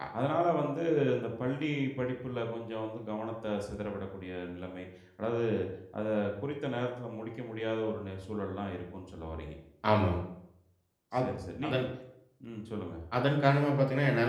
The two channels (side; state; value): both; identical; correlation 1.00